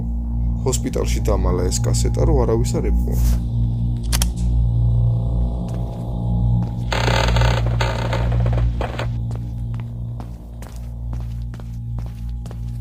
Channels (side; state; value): both; identical; correlation 1.00